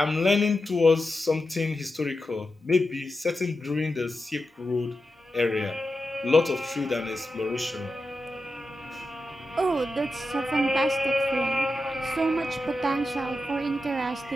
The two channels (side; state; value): both; normal; correlation 0.90